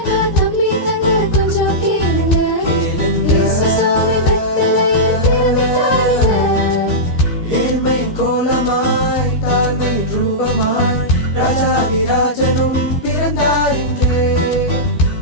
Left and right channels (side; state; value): right; late; 14 ms